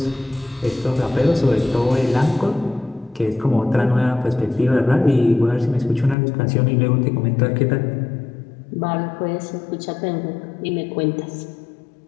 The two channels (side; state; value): right; drops out; at 6.2 s